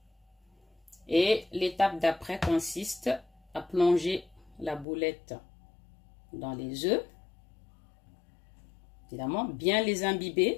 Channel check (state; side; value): drops out; right; at 4.9 s